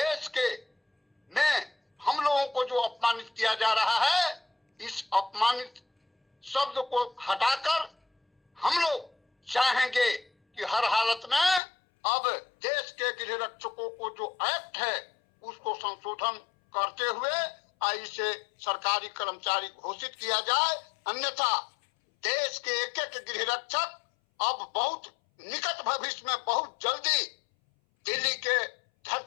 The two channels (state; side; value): drops out; right; at 11.6 s